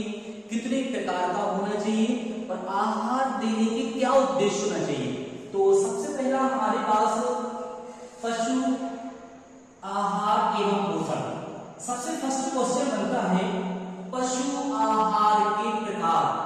कितने प्रकार का होना चाहिए और आहार देने के क्या उद्देश्य होना चाहिए। तो सबसे पहला हमारे पास पशु आहार एवं पोषण। सबसे फर्स्ट क्वेश्चन बनता है पशु आहार के प्रकार,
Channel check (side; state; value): both; identical; correlation 1.00